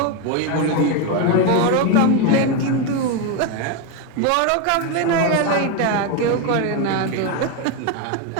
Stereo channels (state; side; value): different; both; correlation 0.02